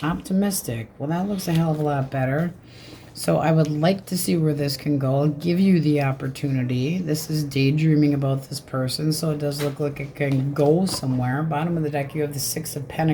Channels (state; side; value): identical; both; correlation 1.00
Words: Optimistic. Well, that looks a hell of a lot better. So I would like to see where this can go. I'll give you the opportunity. This is daydreaming about this person, so it does look like it can go somewhere. Bottom of the deck, you have the Six of